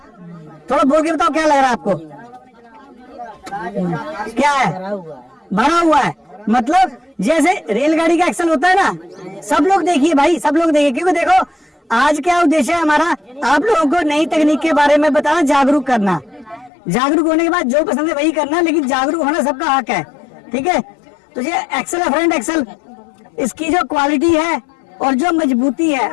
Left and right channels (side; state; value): right; drops out; at 16.7 s